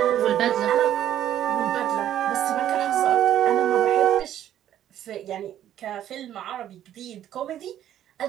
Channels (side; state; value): left; quieter; 11.4 dB